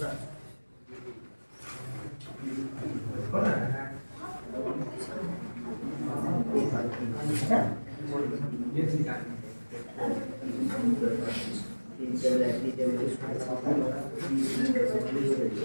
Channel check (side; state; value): both; inverted; correlation -1.00